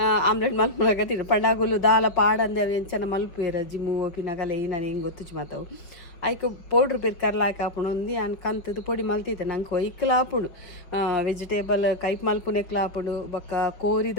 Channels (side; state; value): right; late; 5.8 ms